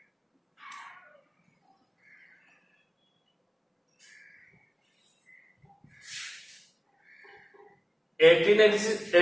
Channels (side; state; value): both; identical; correlation 1.00